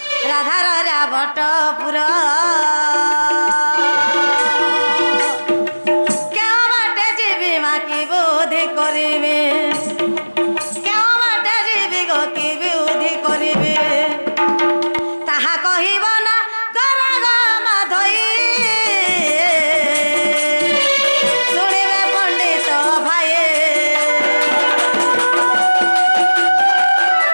राधा रजा बट पुर केउ बाटे जीवी मा की बुद्धि करिबे केउ बाटे जीवी गो की बुद्धि करिबे ताहा कहिब ना गरग माधई सुनिबे पंडित भाई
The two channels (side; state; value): both; inverted; correlation -1.00